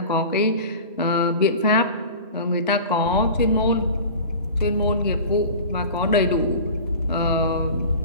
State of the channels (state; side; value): inverted; both; correlation -0.36